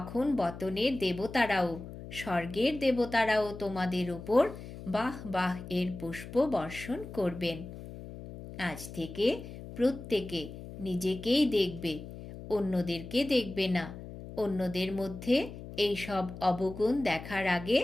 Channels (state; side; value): noise; left; hum, 12 dB below the sound